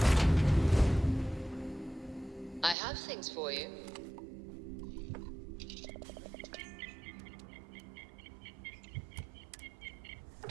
I have things for you.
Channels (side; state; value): left; drops out; at 2.8 s